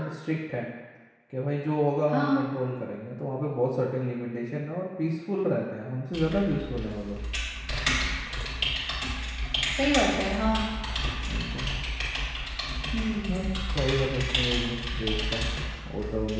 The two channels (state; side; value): identical; both; correlation 1.00